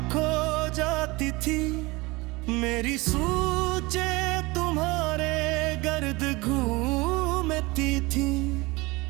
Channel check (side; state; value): left; quieter; 23.3 dB